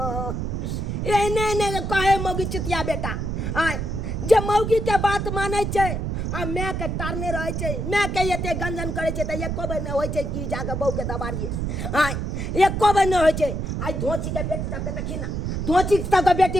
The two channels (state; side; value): noise; right; rumble, 2 dB below the sound